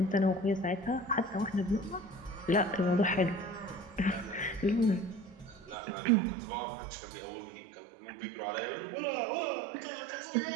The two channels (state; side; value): drops out; left; at 5.8 s